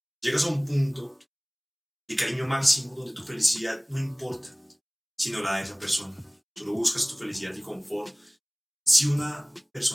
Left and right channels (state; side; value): identical; both; correlation 1.00